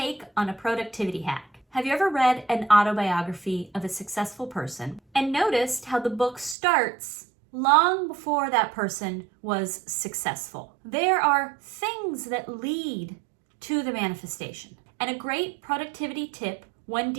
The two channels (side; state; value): left; drops out; at 6.6 s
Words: on a productivity hack. Have you ever read an autobiography of a successful person and noticed how the book starts long before that person was successful? There are things that lead to the manifestation. And a great productivity tip when